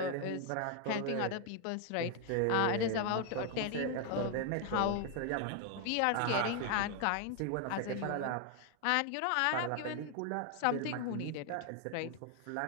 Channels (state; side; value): different; both; correlation 0.00